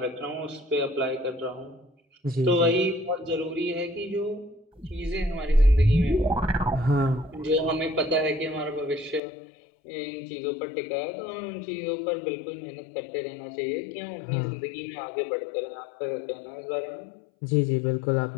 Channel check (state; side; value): drops out; right; at 9.2 s